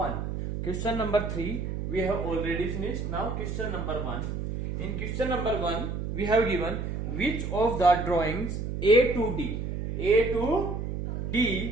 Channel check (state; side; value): noise; right; hum, 4 dB below the sound